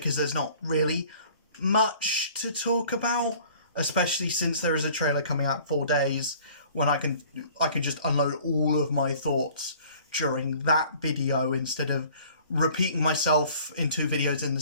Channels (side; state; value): both; inverted; correlation -0.51